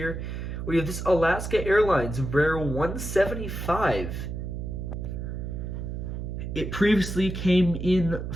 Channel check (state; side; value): noise; right; hum, 5 dB below the sound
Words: We have this Alaska Airlines Embraer 175. It previously came in